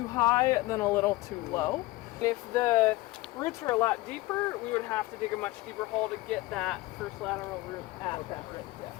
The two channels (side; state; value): right; quieter; 19.6 dB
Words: high than a little too low. If the roots were a lot deeper, we would have to dig a much deeper hole to get that first lateral root at that right